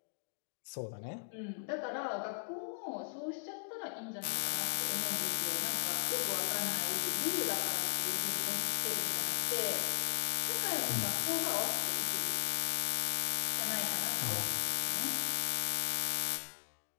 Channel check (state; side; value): silent; right; digital silence